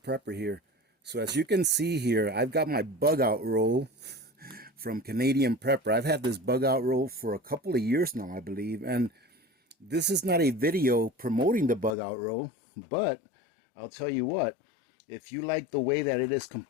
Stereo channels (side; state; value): right; drops out; at 12.0 s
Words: here. So as you can see here, I've got my bug out roll from Canadian Prepper. I've had this bug out roll for a couple of years now, I believe. And this is not a video promoting the bug out roll, but I'll tell you what, if you like the way that it is